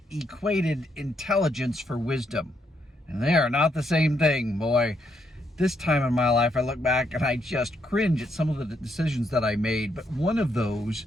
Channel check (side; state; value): both; normal; correlation 0.76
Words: equated intelligence for wisdom. And they are not the same thing, boy. This time in my life, I look back and I just cringe at some of the decisions that I made. But one of those